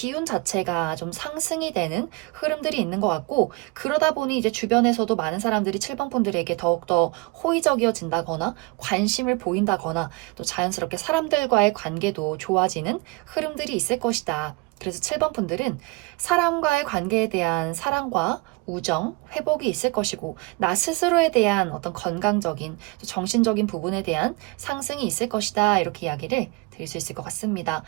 자체가 좀 상승이 되는 흐름들이 있는 것 같고 그러다 보니 이제 주변에서도 많은 사람들이 7번 분들에게 더욱더 호의적이어진다거나 관심을 보인다거나 또 자연스럽게 사람들과의 관계도 좋아지는 흐름들이 있을 것이다. 그래서 7번 분들은 사람과의 관계에 대한 사랑과 우정, 회복이 있을 것이고 나 스스로에 대한 어떤 건강적인 정신적인 부분에 대한 상승이 있을 것이다. 이렇게 이야기를 드릴 수 있을 것 같습니다.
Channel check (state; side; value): quieter; left; 25.4 dB